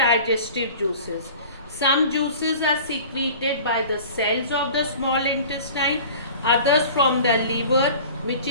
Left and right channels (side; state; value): both; inverted; correlation -0.42